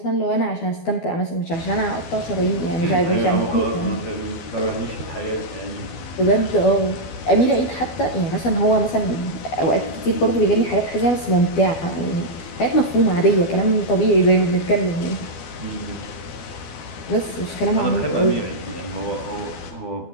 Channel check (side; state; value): right; late; 12 ms